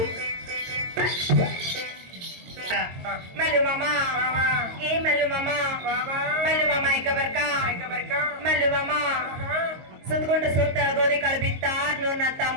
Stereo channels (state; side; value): late; left; 22 ms